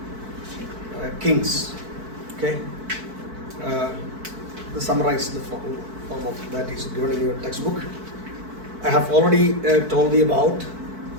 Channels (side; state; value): left; late; 4.5 ms